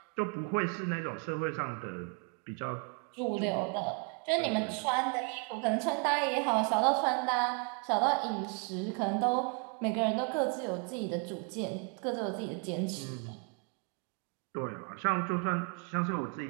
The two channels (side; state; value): left; quieter; 36.6 dB